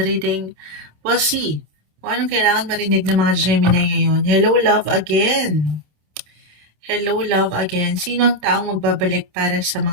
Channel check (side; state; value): left; late; 27 ms